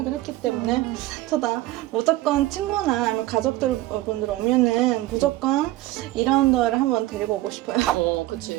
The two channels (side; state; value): left; quieter; 16.9 dB